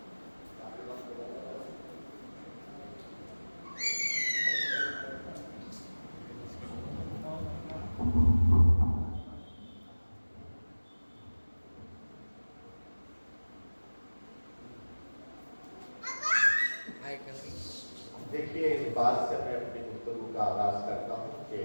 देखिए, इस बात से मैं अपनी गुफ्तगू का आगाज करता हूँ कि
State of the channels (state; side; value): inverted; both; correlation -1.00